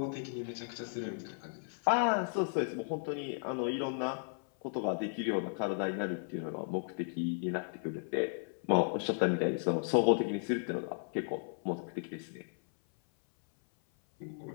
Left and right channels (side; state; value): right; silent; 54 dB below the other